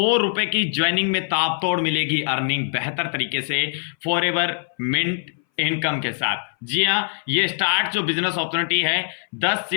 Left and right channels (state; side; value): silent; right; 60 dB below the other